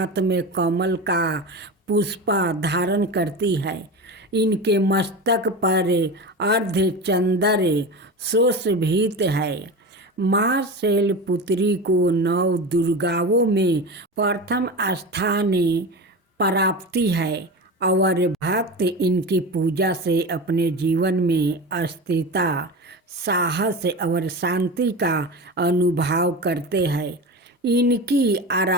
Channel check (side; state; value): both; normal; correlation 0.26